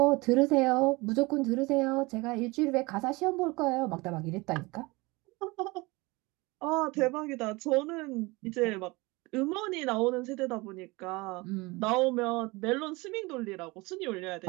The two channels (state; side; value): quieter; left; 23.9 dB